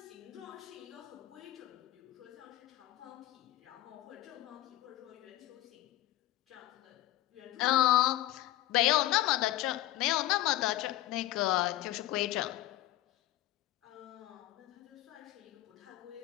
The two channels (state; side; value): quieter; right; 15.7 dB